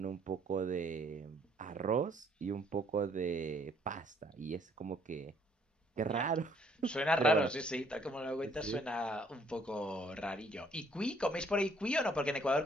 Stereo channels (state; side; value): normal; both; correlation 0.64